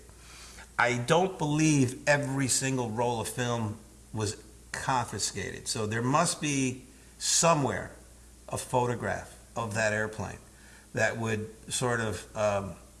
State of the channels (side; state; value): both; identical; correlation 1.00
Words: I don't believe every single roll of film was confiscated. So there must be somewhere a photograph of that airplane that would sort of